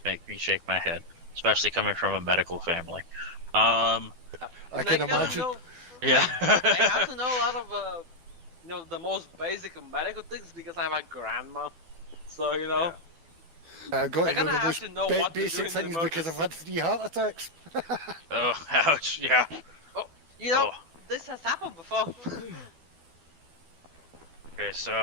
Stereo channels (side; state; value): left; late; 12 ms